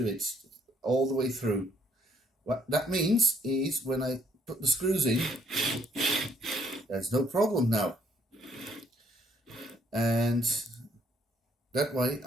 it, all the way through. What that means is when I put the screws in, there's no problem now. And that way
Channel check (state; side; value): normal; both; correlation 0.67